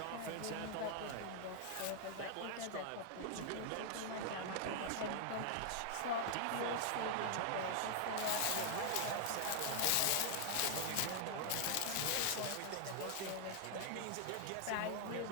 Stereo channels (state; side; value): different; both; correlation 0.00